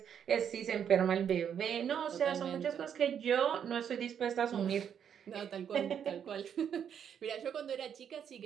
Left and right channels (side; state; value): left; quieter; 8.4 dB